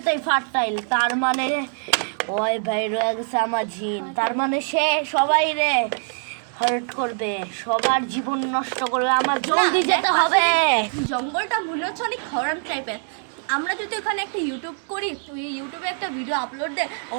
ফার্টাইল, তার মানে ওই ভাই রয়ে গেছে আমার জিন, তার মানে সে সবাই রে হার্ট করবে, সবার জীবন নষ্ট করবে। আমার জলদি যেতে হবে। জঙ্গলটা মনে হচ্ছে অনেক হরর টাইপের। আমরা যদি ওখানে একটা ইউটিউব করি, তুই ইউটিউবে একটা ভিডিও আপলোড দে,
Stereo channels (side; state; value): left; silent; 58 dB below the other